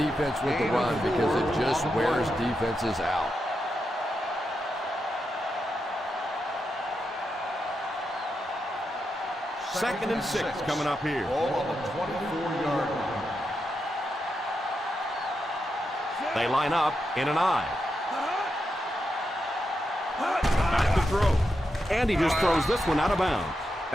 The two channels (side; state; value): both; normal; correlation 0.86